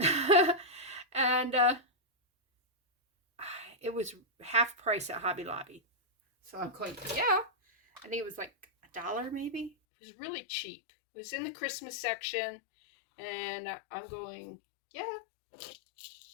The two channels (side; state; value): right; drops out; at 9.7 s